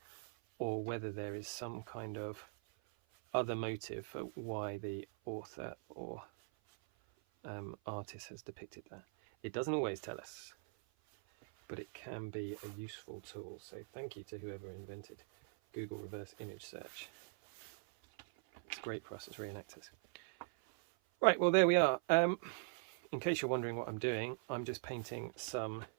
or whether there is some kind of other motive for why the author or artist has depicted that. It doesn't always tell us, but it can be a useful tool. So thank you to whoever invented Google reverse image search. It's great for us as reenactors. Right, well there we are. In case you're wondering what I'm doing, I'm just painting some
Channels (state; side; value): silent; left; 50 dB below the other